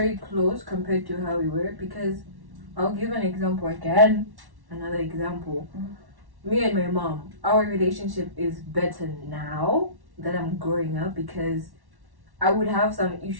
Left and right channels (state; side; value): late; left; 1.1 ms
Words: close compared to how we were, because I'll give an example again. Another example. Me and my mom, our relationship is better now that I'm growing up, because I would have some